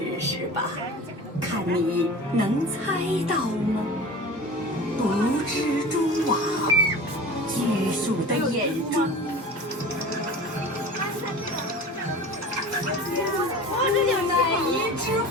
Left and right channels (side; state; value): both; normal; correlation 0.37